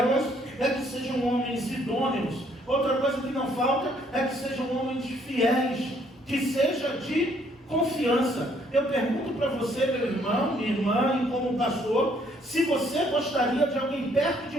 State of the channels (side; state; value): both; normal; correlation 0.66